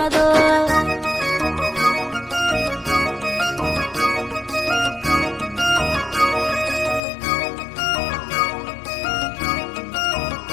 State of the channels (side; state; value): right; drops out; at 7.0 s